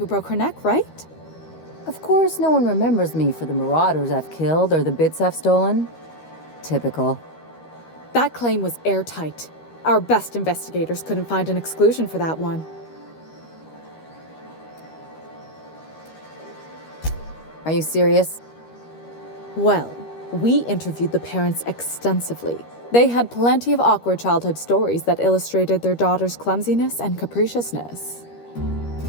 broke her neck, right? Of course, no one remembers me for the marauders I've killed or the bits I've stolen. Typical. That claim was airtight. Our best investigators couldn't find an exclusion for that one. Are you serious? Well, we interviewed the parents extensively. They had plenty of awkward childhood stories that illustrated their daughter's clumsiness and capriciousness.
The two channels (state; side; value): late; right; 13 ms